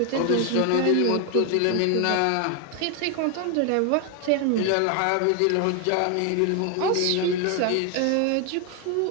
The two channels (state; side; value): different; both; correlation 0.01